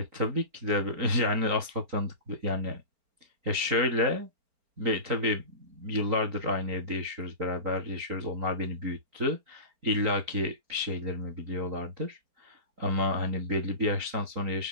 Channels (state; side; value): late; left; 4.4 ms